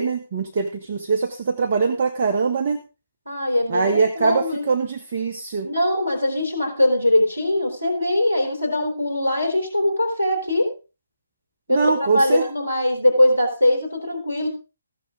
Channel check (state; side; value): inverted; both; correlation -0.87